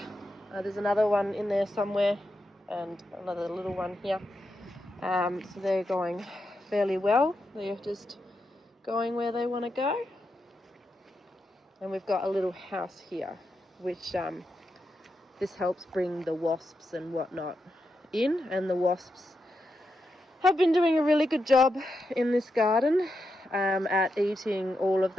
There's another one in there somewhere, and another little one here. So they're going fairly well. They're just going where they want to go. And we've got a little house here, which this helps bring the wasps and whatnot in. And the wasps have been doing a really good job in this garden at eating all of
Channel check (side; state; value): both; normal; correlation 0.86